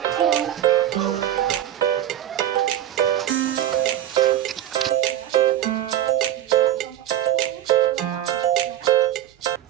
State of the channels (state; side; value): quieter; left; 12.2 dB